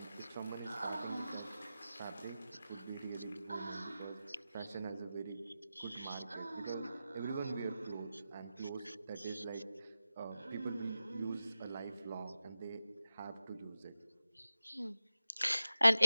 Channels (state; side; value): inverted; both; correlation -0.94